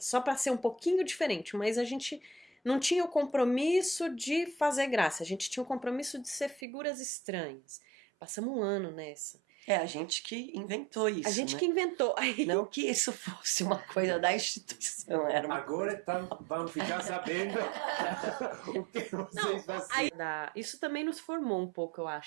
para ser um pouquinho diferente, mas a gente não tinha o compromisso de fazer graça, a gente tinha o compromisso de ser figuras estranhas. Passamos 1 ano nessa. A gente que inventou isso. A gente, né, que inventou. Não que isso fosse uma coisa da instituição. Agora vamos ficar sabendo o que vocês fazem. Isso também nos formou um pouco, eu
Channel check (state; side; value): drops out; left; at 6.7 s